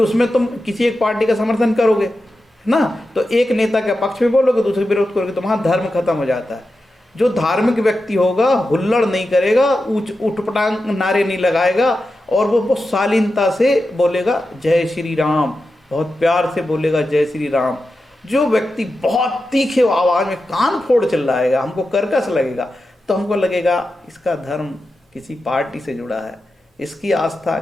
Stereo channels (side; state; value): both; normal; correlation 0.91